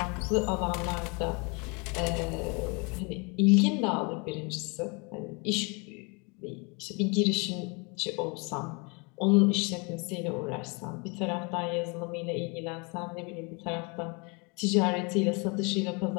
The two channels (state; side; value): quieter; right; 31.2 dB